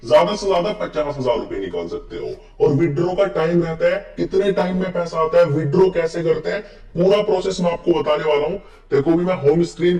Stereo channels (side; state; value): both; identical; correlation 1.00